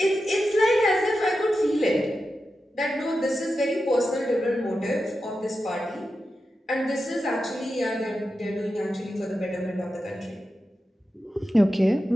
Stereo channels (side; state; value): both; normal; correlation 0.90